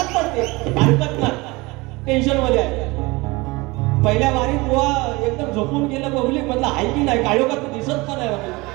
पडते, हरकत नाही, टेन्शन मध्ये आहे. पहिल्या वारीत बुवा एकदम झोपून गेलं पब्लिक मधलं आहे की नाही, काळोखात दिसत पण आहे.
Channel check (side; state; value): left; quieter; 23.4 dB